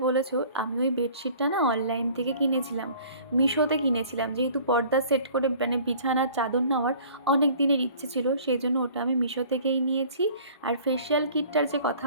বলেছো, আমি ওই বেডশিটটা না অনলাইন থেকে কিনেছিলাম, মিশোতে কিনেছিলাম। যেহেতু পর্দা সেট করে মানে বিছানার চাদর নেওয়ার অনেক দিনের ইচ্ছে ছিল, সেই জন্য ওটা আমি মিশো থেকেই নিয়েছি। আর ফেশিয়াল কিটটার যে কথা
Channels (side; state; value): both; inverted; correlation -0.50